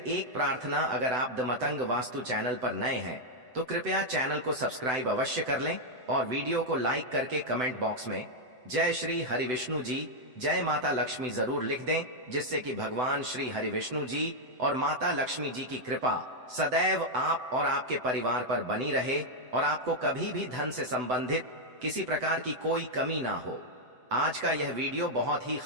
एक प्रार्थना, अगर आप द मतंग वास्तु चैनल पर नए हैं तो कृपया चैनल को सब्सक्राइब अवश्य कर लें और वीडियो को लाइक करके कमेंट बॉक्स में जय श्री हरि विष्णु जी, जय माता लक्ष्मी जरूर लिख दें, जिससे कि भगवान श्री हरि विष्णु जी और माता लक्ष्मी जी की कृपा सदैव आप और आपके परिवार पर बनी रहे और आपको कभी भी धन से संबंधित किसी प्रकार की कोई कमी ना हो। आज का यह वीडियो बहुत ही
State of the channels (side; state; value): left; late; 7.9 ms